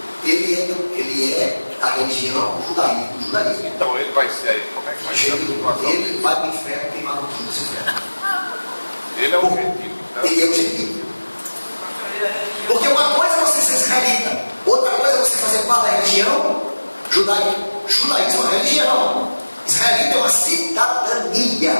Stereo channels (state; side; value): inverted; both; correlation -1.00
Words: Ele é a religião judaísmo. Então ele vai ser, como é que vai ser a situação? Ele vai para o inferno queimado tudo esse inferno. Ele é o gentil. Então, Ele é o gentil. Porque uma coisa é você ser israelita, outra coisa é você fazer parte da religião judaica. Judaísmo é uma religião. Israelita é uma